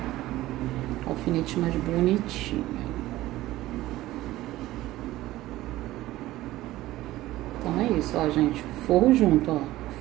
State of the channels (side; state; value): left; quieter; 16.3 dB